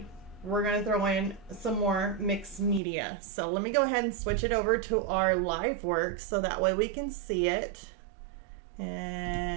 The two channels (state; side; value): drops out; left; at 2.8 s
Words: we're going to throw in some more mixed media. So let me go ahead and switch it over to our live work so that way we can see it.